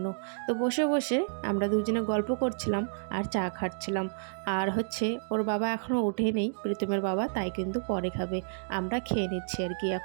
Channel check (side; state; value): left; silent; digital silence